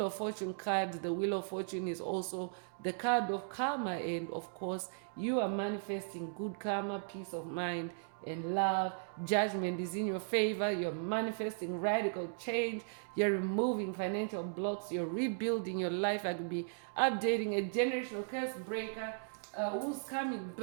of Fortune card. The Wheel of Fortune is also the card of karma, and of course you are manifesting good karma, peace of mind and love. Judgment is in your favor. You're manifesting radical change. You're removing financial blocks. You're rebuilding your life. I could be updating a generational curse breaker whose karmic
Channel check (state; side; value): silent; left; digital silence